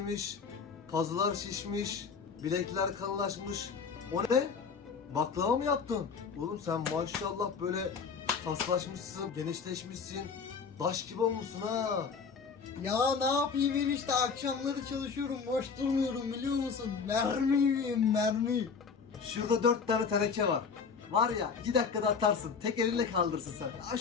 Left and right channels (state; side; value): quieter; right; 5.6 dB